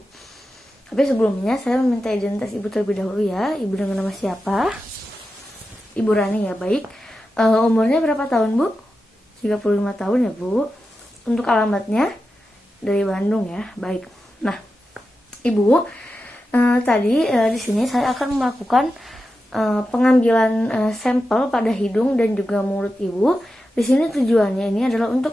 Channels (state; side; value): normal; both; correlation 0.91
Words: Tapi sebelumnya, saya meminta identitas Ibu terlebih dahulu ya. Ibu dengan nama siapa? Ibu Rani ya, baik. Umurnya berapa tahun, Bu? 35 tahun ya, Bu. Untuk alamatnya dari Bandung ya, baik. Nah, Ibu, tadi di sini saya akan melakukan pengambilan sampel pada hidung dan juga mulut Ibu. Di sini tujuannya ini adalah